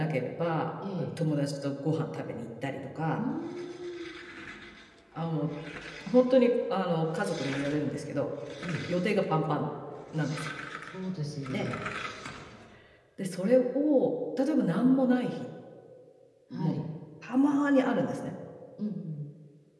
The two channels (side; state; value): both; identical; correlation 1.00